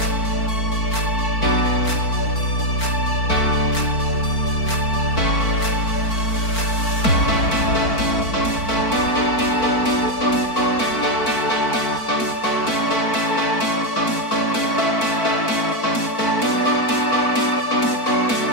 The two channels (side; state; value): right; late; 4.5 ms